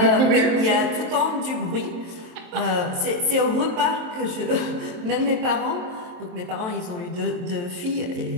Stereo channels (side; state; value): left; late; 23 ms